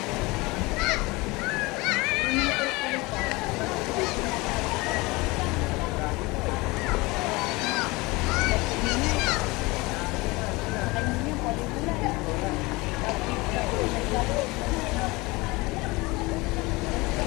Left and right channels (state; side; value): quieter; right; 23.4 dB